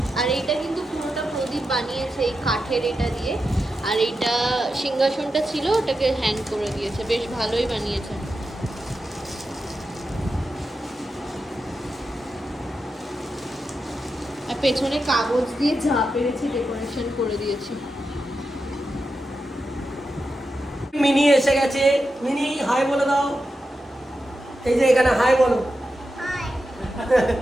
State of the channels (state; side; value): normal; both; correlation 0.89